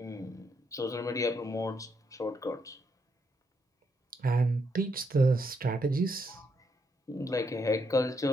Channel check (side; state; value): both; normal; correlation 0.77